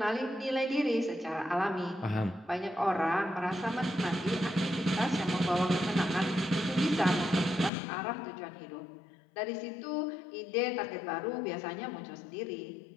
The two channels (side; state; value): right; drops out; at 7.7 s